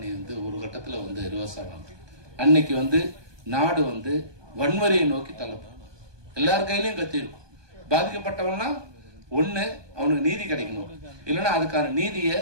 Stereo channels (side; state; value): left; late; 1.2 ms